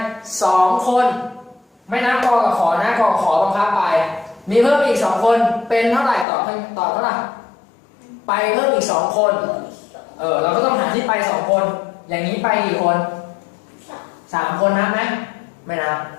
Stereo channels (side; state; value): right; drops out; at 6.2 s